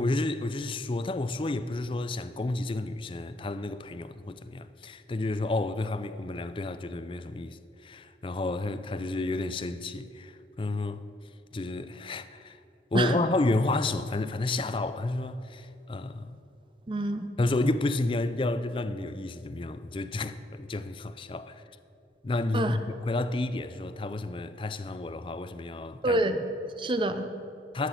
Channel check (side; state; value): both; normal; correlation 0.68